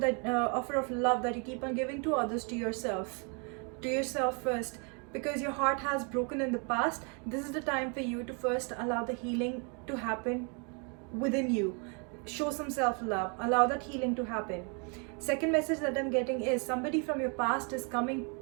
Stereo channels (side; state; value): left; quieter; 36.2 dB